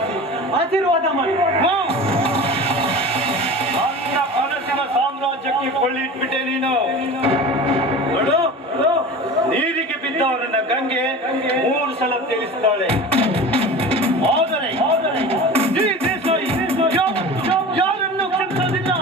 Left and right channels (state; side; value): normal; both; correlation 0.34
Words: ಆಶೀರ್ವಾದ ಮಾಡಿ. ನನ್ನ ಕನಸಿನ ಸಾಮ್ರಾಜ್ಯಕ್ಕೆ ಕೊಳ್ಳಿಟ್ಬಿಟ್ಟೆ ನೀನು. ನೋಡು, ನೀರಿಗೆ ಬಿದ್ದವರನ್ನ ಗಂಗೆ 3 ಸಲ ತಿಳಿಸ್ತಾಳೆ. ಆದರೆ ಈ ದೇಸಾಯಿ ಯಾರನ್ನು ಕ್ಷಮಿಸೋದಿಲ್ಲ.